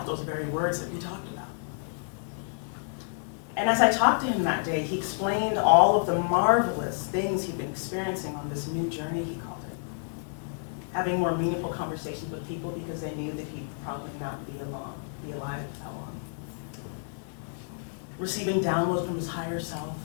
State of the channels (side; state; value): right; silent; 58 dB below the other